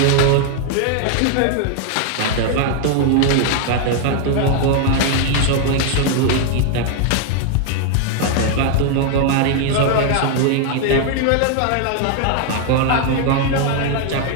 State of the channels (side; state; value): both; different; correlation 0.00